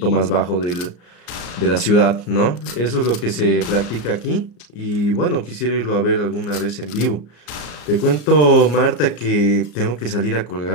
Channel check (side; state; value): right; late; 34 ms